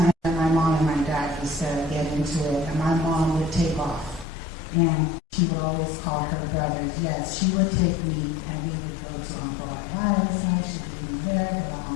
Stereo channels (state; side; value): drops out; right; at 4.2 s